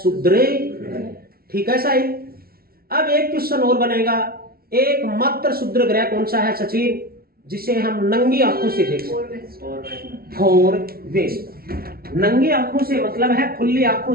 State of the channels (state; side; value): late; left; 0.44 ms